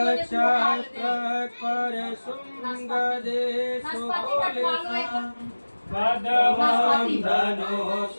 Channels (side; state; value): both; inverted; correlation -1.00